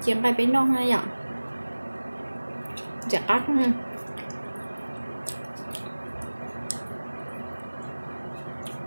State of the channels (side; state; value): both; inverted; correlation -1.00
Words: chiên cái bánh nó hay vậy chặt ác mà